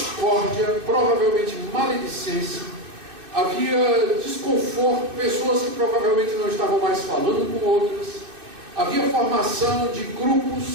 provavelmente maledicência, havia desconforto, pessoas que provavelmente não estavam mais falando com outras, havia formação de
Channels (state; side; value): late; left; 2.6 ms